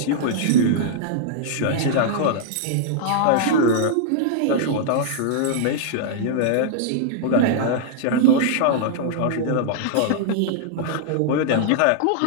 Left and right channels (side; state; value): both; different; correlation -0.01